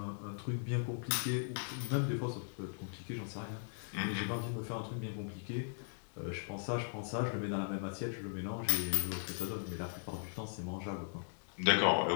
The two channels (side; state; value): right; silent; digital silence